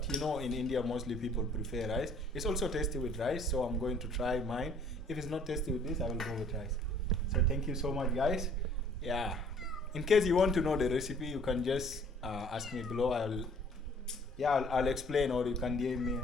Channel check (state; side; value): normal; both; correlation 0.56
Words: you know, in India, mostly people prefer rice. It's also tasty with rice. So I'm going to try mine. If it's not tasty with this, I will go with rice. So thank you so much, guys. Yeah. In case you want to know the recipe, you can just ask me below. I'll explain, or you can DM me